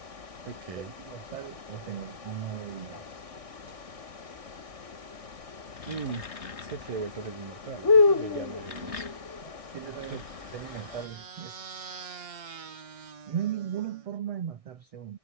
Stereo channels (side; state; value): left; late; 1.6 ms